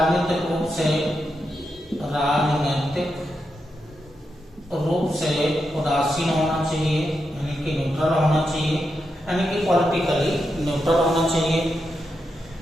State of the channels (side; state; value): both; normal; correlation 0.86